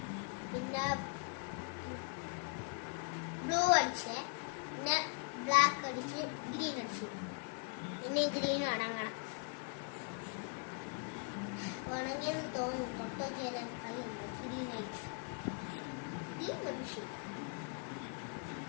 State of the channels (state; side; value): quieter; right; 37.9 dB